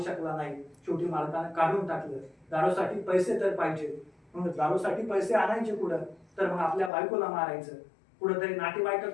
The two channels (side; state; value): right; drops out; at 6.9 s